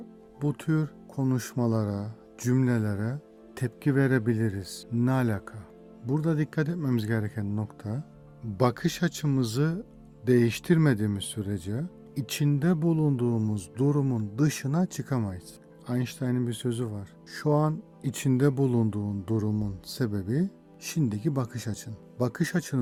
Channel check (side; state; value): both; identical; correlation 1.00